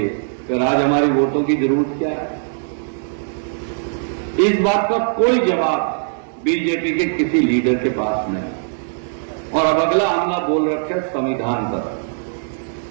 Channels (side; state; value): left; silent; digital silence